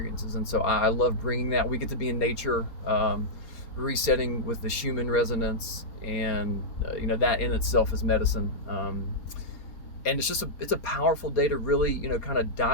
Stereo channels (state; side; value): late; right; 4.3 ms